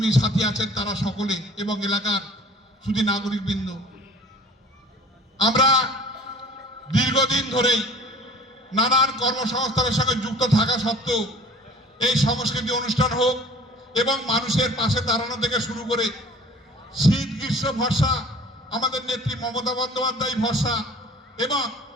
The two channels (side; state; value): both; normal; correlation 0.47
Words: সাথী আছেন তারা সকলে এবং এলাকার শুধু নাগরিকবৃন্দ। আমরা দীর্ঘদিন ধরেই নানান কর্মসংস্থানের সঙ্গে যুক্ত থাকা সত্ত্বেও এই সংস্কৃতি অনুষ্ঠান হোক এবং মানুষের পাশে দাঁড়ানো থেকে শুরু করে শীত গ্রীষ্ম ভরসা আমাদের নেত্রী মমতা বন্দ্যোপাধ্যায় ভরসা এবং